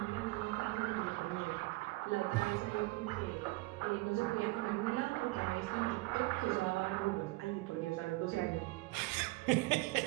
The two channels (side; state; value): left; quieter; 22.6 dB